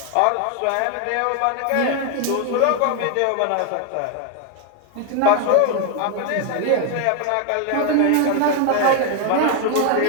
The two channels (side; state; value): both; different; correlation 0.01